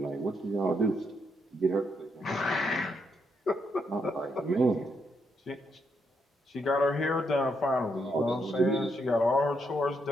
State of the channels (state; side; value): normal; both; correlation 0.78